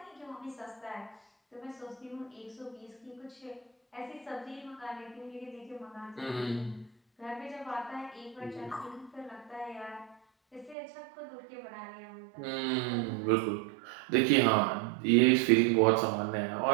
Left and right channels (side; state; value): left; drops out; at 10.8 s